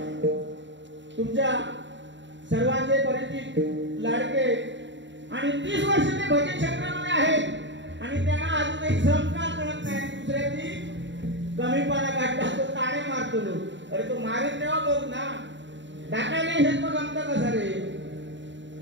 तुमच्या सर्वांचे परिचित लाडके आणि 30 वर्ष ते भजन क्षेत्रामध्ये आहेत आणि त्यांना अजूनही संस्कार कळत नाही. दुसऱ्याची कमीपणा काढला तो ताणे मारतो. अरे तो मारीत तेव्हा बघ ना, टाकायला येत मग आमचा कसा रे.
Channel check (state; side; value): late; left; 0.53 ms